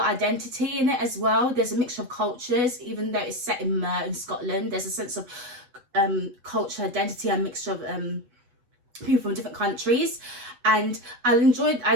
identity in it as well. There's a mixture of cultures, even though it's set in Mer in Scotland. There's a sense of culture identity and mixture of people from different countries. And I enjoyed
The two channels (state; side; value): late; left; 8.1 ms